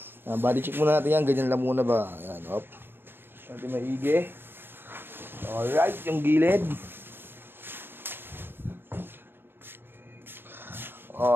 Body check muna natin yan. Ganyan lang muna ba? Ayan, op. Natin maigi. Alright, yung gilid.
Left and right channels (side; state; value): left; late; 0.099 ms